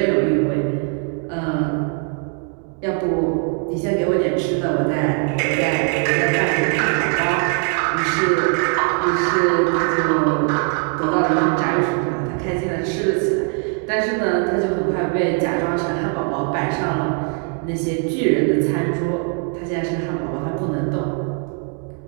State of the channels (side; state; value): left; quieter; 35.6 dB